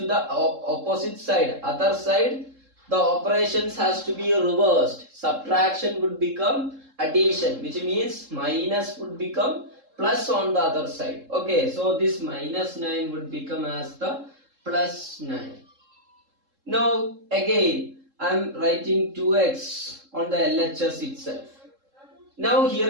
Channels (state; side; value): late; left; 3.7 ms